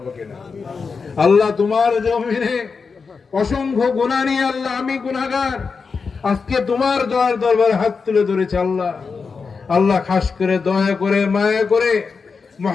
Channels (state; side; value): quieter; right; 5.1 dB